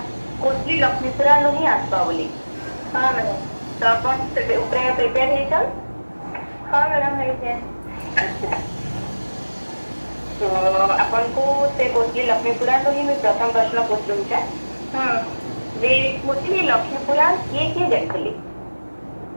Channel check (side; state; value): both; inverted; correlation -1.00